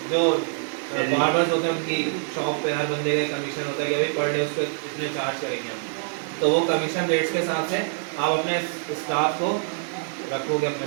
जो बार्बर्स होते हैं उनकी शॉप पे हर बंदे का कमीशन होता है कि अभी पर डे उसको इतने चार्ज करेंगे हम, तो वो कमीशन रेट्स के हिसाब से आप अपने स्टाफ को रखोगे अपने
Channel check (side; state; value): left; silent; 62 dB below the other